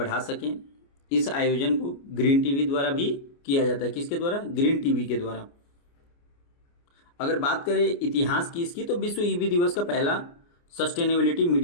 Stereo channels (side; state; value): right; late; 29 ms